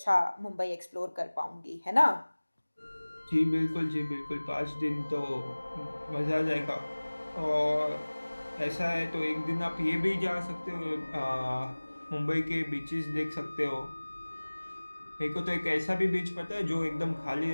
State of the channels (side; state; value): both; inverted; correlation -1.00